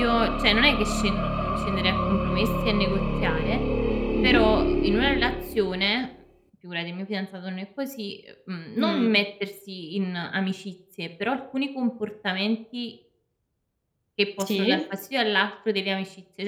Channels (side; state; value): both; identical; correlation 1.00